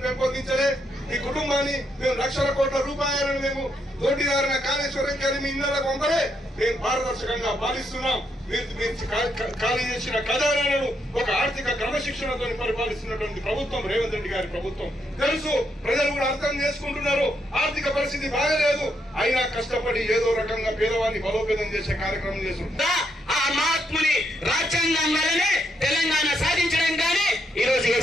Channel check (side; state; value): both; normal; correlation 0.78